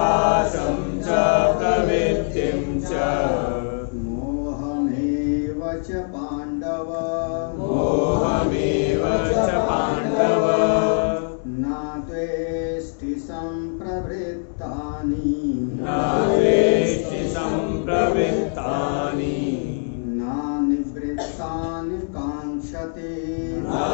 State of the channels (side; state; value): right; silent; digital silence